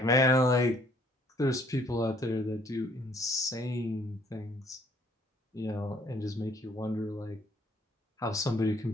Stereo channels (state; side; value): normal; both; correlation 0.63